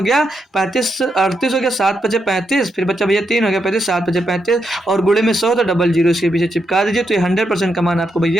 गया 35 38 हो गया, 7 बचे 35, फिर बच्चा भैया 3 हो गया 35, 7 बचे 35 और गुणे में 100 तो डबल जीरो इसके पीछे चिपका दीजिए। तो ये 100% का मान आपको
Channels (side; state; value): both; normal; correlation 0.82